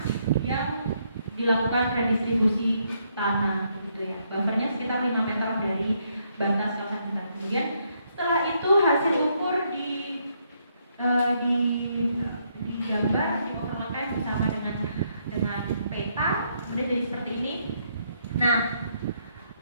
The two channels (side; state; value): both; inverted; correlation -0.74